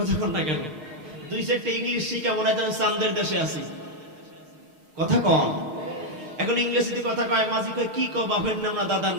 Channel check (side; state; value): left; late; 6.5 ms